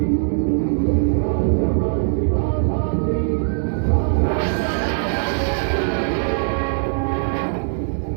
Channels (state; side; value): silent; left; digital silence